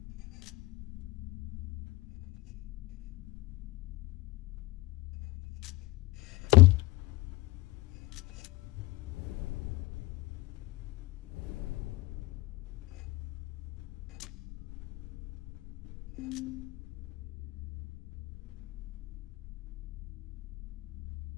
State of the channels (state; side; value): quieter; right; 20.3 dB